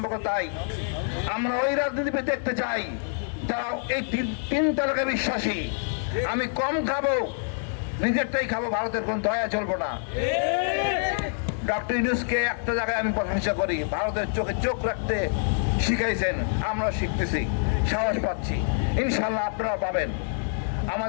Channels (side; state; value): right; silent; digital silence